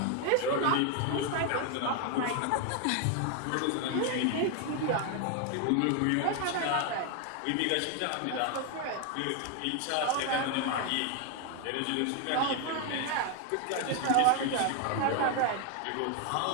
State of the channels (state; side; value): different; both; correlation 0.01